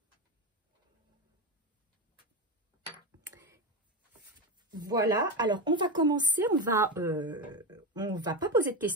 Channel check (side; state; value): both; normal; correlation 0.16